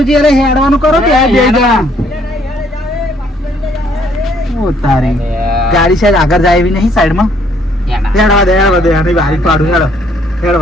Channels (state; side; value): normal; both; correlation 0.65